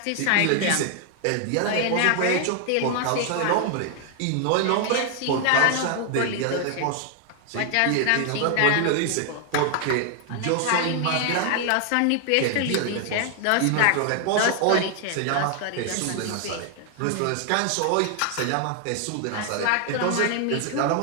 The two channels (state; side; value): different; both; correlation 0.00